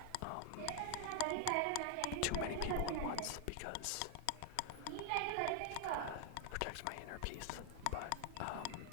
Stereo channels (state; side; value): different; both; correlation 0.00